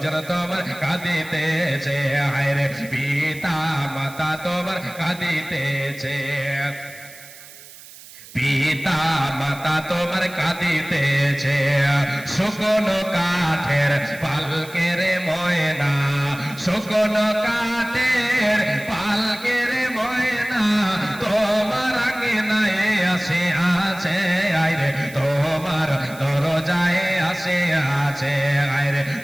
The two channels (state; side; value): noise; right; hiss, 19 dB below the sound